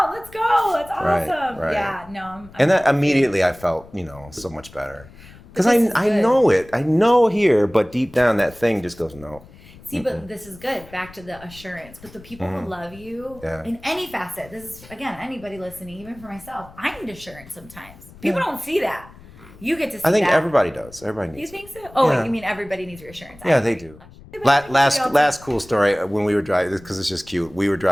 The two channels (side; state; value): left; noise; rumble, 21 dB below the sound